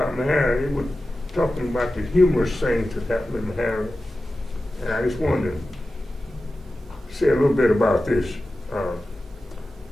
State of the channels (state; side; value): normal; both; correlation 0.94